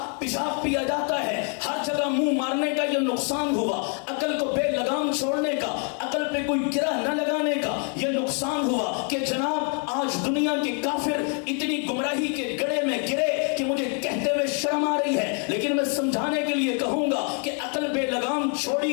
پیشاب پیا جاتا ہے. ہر جگہ منہ مارنے کا یہ نقصان ہوا. عقل کو بے لگام چھوڑنے کا, عقل پہ کوئی گرہ نہ لگانے کا یہ نقصان ہوا کہ جناب آج دنیا کے کافر اتنی گمراہی کے گڑھے میں گرے کہ مجھے کہتے ہوئے شرم آ رہی ہے. لیکن میں سمجھانے کے لیے کہوں گا کہ عقل بے لگام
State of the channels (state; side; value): quieter; right; 39.9 dB